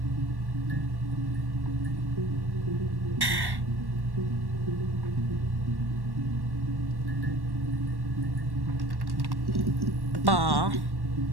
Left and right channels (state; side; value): late; left; 1.1 ms